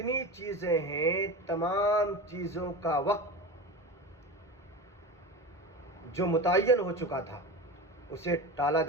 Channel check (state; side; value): normal; both; correlation 0.28